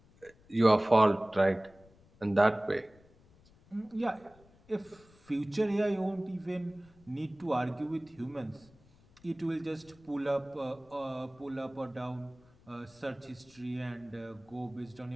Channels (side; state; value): left; noise; rumble, 28 dB below the sound